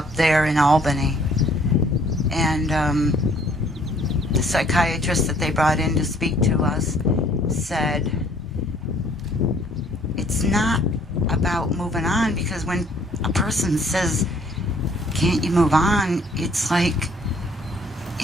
there in Albany. And the psychiatrist that they brought in to speak to us said, it's not about moving on, because when a person says, can't you move on? It's like,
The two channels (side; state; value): both; normal; correlation 0.60